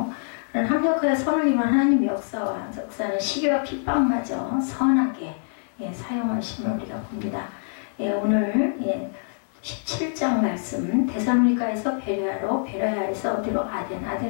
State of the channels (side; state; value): right; silent; digital silence